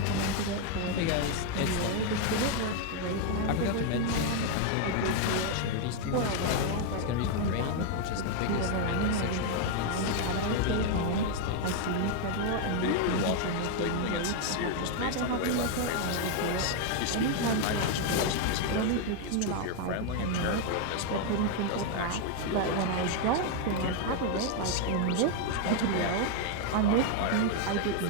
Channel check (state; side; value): different; both; correlation 0.01